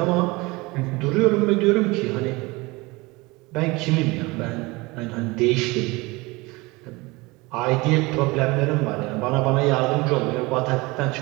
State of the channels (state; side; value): quieter; left; 23.6 dB